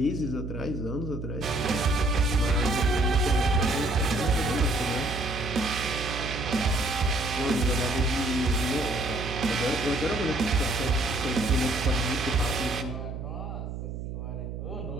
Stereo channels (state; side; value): noise; right; hum, 7 dB below the sound